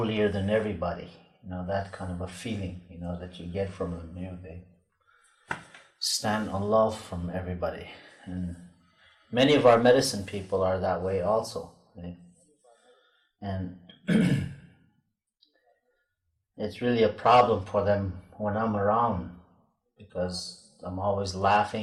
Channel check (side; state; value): both; identical; correlation 1.00